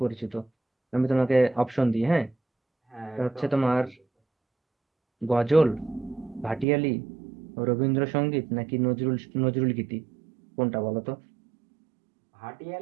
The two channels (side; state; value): left; drops out; at 6.7 s